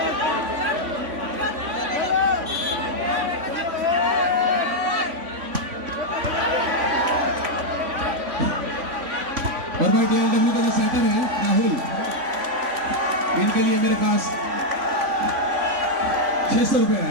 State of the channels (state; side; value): late; left; 3.5 ms